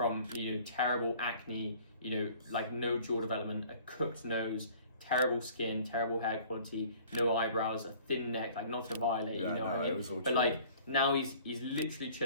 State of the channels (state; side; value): inverted; both; correlation -0.51